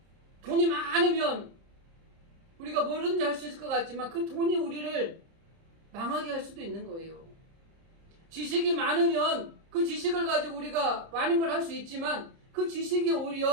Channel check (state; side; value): late; left; 30 ms